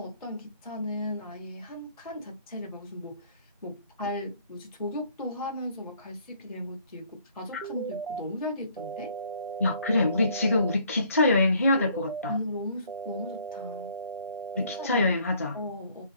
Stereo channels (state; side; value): inverted; both; correlation -0.60